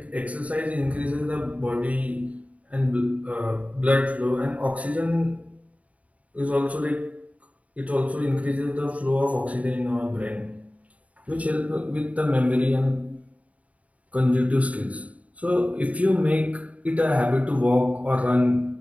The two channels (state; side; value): late; left; 0.068 ms